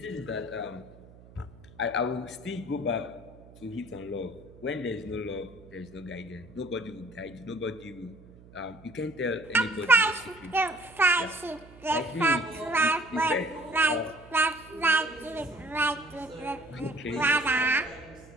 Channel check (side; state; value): right; noise; hum, 22 dB below the sound